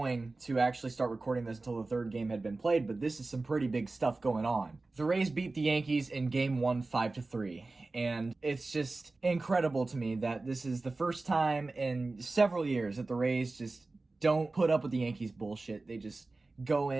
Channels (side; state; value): left; quieter; 3.4 dB